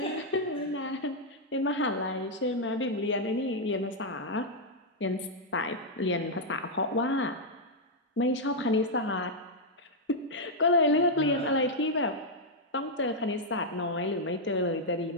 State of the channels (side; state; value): both; normal; correlation -0.03